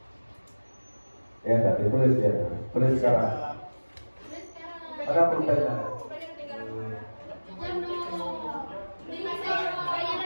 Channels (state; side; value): inverted; both; correlation -1.00